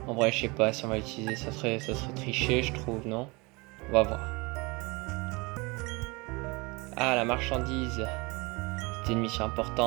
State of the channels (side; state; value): left; quieter; 26.2 dB